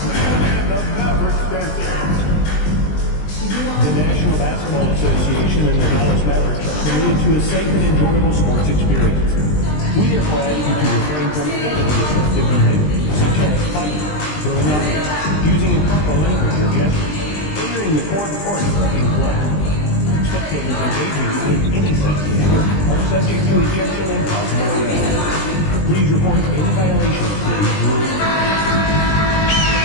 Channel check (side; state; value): right; late; 20 ms